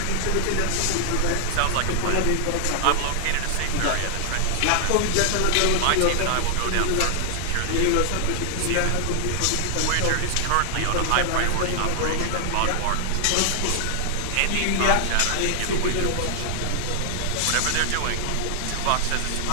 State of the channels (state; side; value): different; both; correlation 0.00